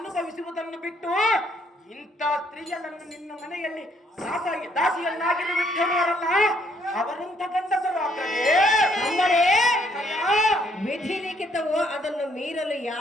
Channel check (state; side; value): normal; both; correlation 0.68